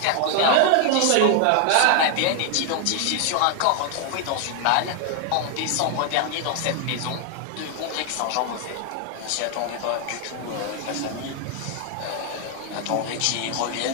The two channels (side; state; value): both; different; correlation 0.00